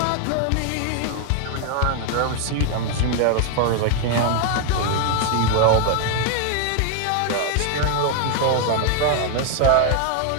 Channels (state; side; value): different; both; correlation 0.01